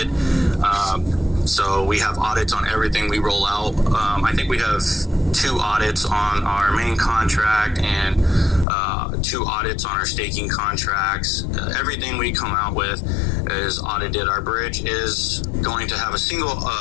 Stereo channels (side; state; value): right; drops out; at 8.7 s